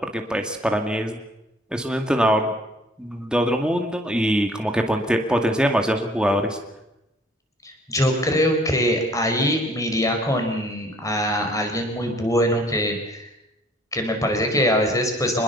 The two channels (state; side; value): normal; both; correlation 0.56